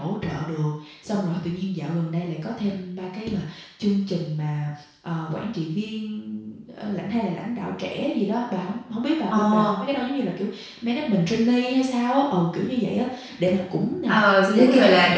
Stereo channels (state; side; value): identical; both; correlation 1.00